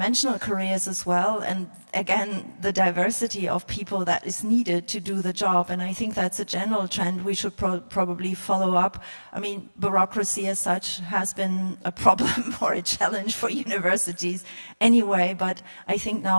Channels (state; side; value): inverted; both; correlation -1.00